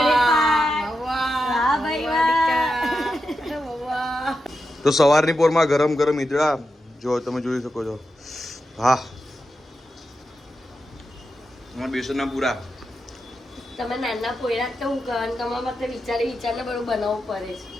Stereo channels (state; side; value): normal; both; correlation 0.88